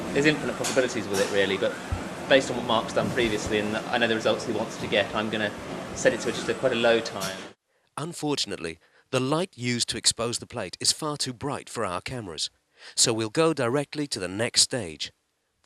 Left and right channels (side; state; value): both; identical; correlation 1.00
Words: there's infinite possibilities with it really, but based on what Mark's done previously and I know the results he wants to get, I'm going to set it to just quite a low time. Unfortunately, the light used to expose the plate is far too bright for our cameras, so we'll go directly to the next stage,